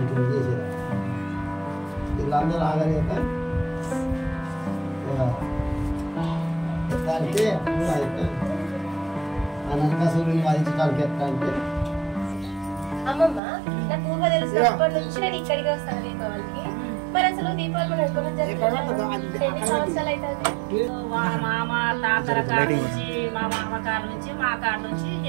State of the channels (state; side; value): drops out; left; at 13.4 s